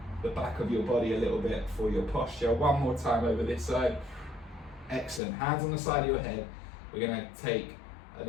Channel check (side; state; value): right; drops out; at 5.2 s